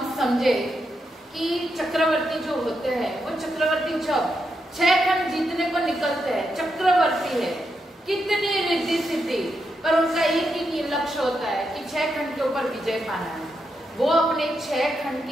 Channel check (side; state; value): both; normal; correlation 0.83